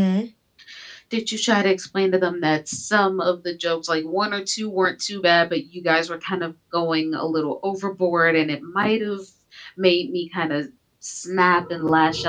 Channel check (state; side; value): identical; both; correlation 1.00